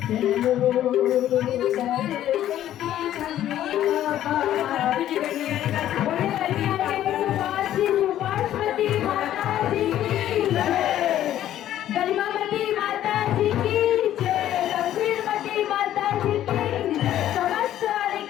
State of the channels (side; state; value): right; quieter; 12.2 dB